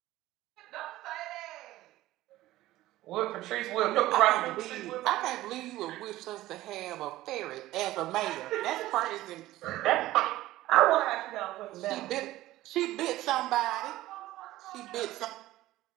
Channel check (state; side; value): quieter; left; 16.1 dB